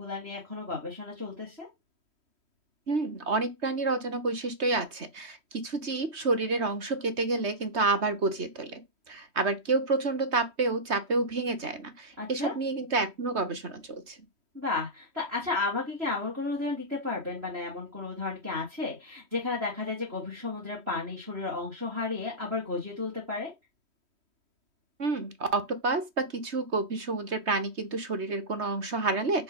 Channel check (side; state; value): left; late; 3.2 ms